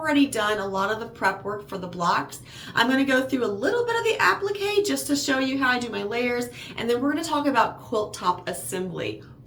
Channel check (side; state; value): both; identical; correlation 1.00